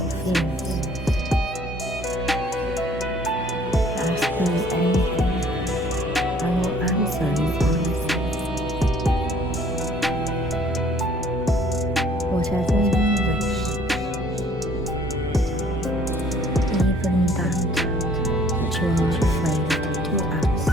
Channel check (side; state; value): both; normal; correlation 0.57